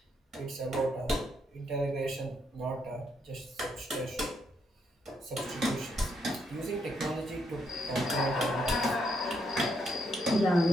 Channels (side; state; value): both; normal; correlation 0.76